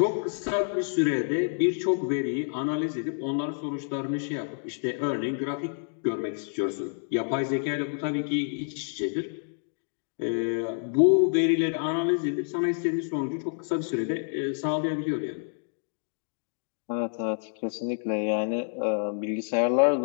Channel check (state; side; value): silent; right; digital silence